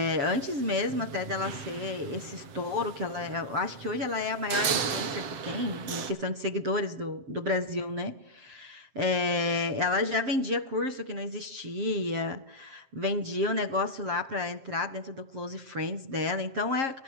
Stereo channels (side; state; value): left; late; 7.5 ms